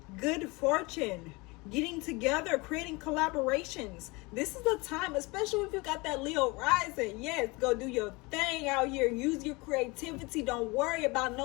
good fortune, getting together, creating collaborations. This is the time, especially if you got that Leo rising. Yes, go do your thing out here. Use your creativity. Don't worry about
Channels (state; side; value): quieter; right; 25.3 dB